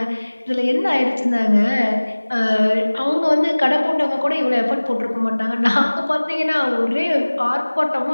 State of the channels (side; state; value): both; inverted; correlation -1.00